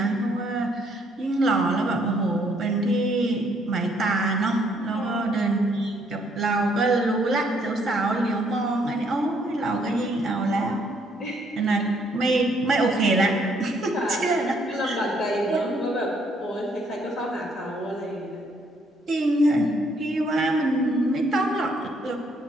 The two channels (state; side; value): normal; both; correlation 0.68